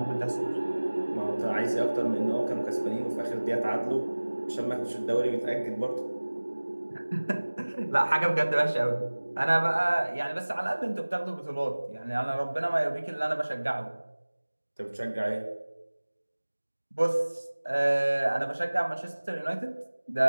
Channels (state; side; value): inverted; both; correlation -1.00